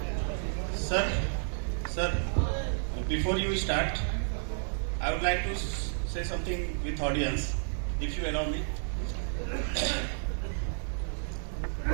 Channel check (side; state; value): left; silent; 57 dB below the other